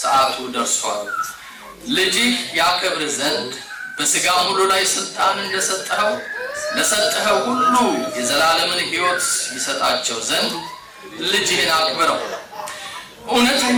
ሰዓቱ ደርሷል። ልጅህ ያከብር ዘንድ በሥጋም ሁሉ ላይ ስልጣን እንደሰጠኸው ለሰጠኸው ሁሉ የዘላለምን ሕይወት ይሰጣቸው ዘንድ ልጅህን አክብረው።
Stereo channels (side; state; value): both; identical; correlation 1.00